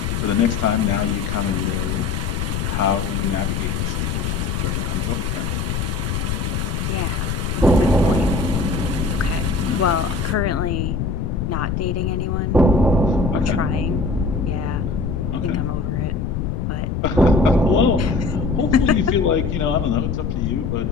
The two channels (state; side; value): noise; left; rumble, 1 dB below the sound